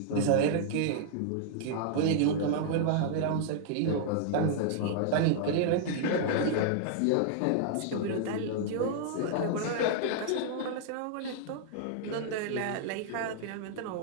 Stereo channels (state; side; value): different; both; correlation -0.01